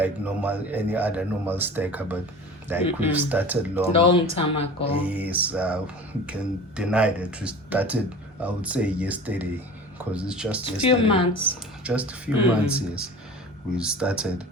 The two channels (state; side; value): normal; both; correlation 0.38